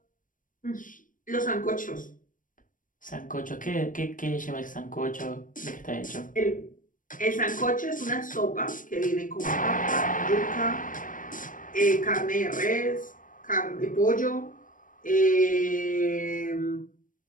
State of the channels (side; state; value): right; late; 0.39 ms